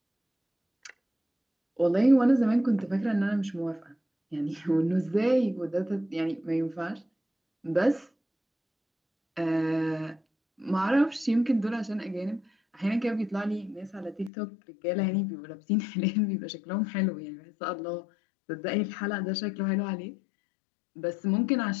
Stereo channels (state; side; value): drops out; right; at 14.3 s